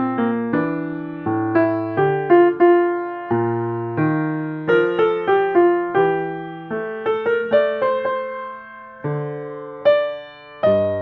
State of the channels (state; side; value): identical; both; correlation 1.00